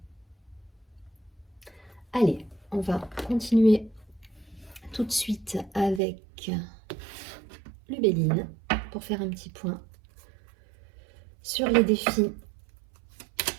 Allez, on va continuer tout de suite avec Lubéline pour faire un petit point sur les défis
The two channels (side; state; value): left; drops out; at 6.0 s